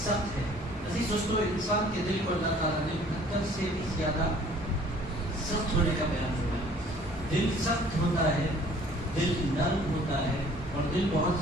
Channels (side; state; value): both; normal; correlation 0.54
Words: سخت ہے۔ عزیز دوستو، انسان کے دل کو اللہ تعالیٰ نے پتھر سے بھی زیادہ سخت ہونے کا بیان فرمایا۔ دل سخت ہوتا ہے، دل نرم ہوتا ہے، اور دل